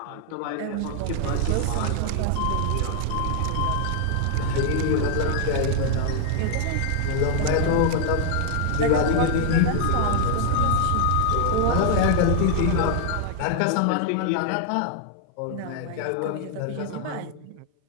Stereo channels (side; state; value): both; different; correlation 0.00